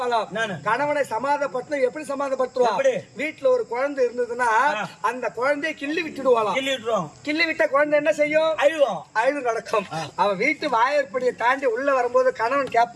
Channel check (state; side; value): identical; both; correlation 1.00